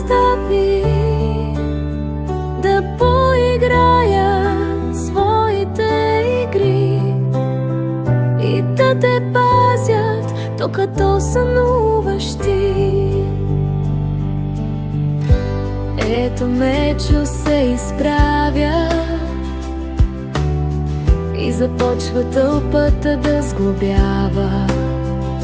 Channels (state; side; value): identical; both; correlation 1.00